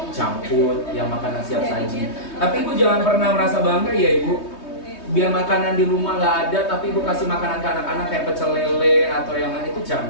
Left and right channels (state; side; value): late; right; 3.2 ms